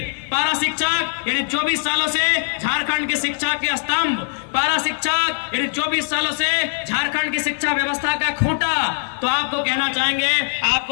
पारा शिक्षक यानी 24 सालों से झारखंड के शिक्षा के स्तंभ, पारा शिक्षक यानी 24 सालों से झारखंड की शिक्षा व्यवस्था का खूंटा। तो आपको कहना चाहेंगे,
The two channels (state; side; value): silent; right; digital silence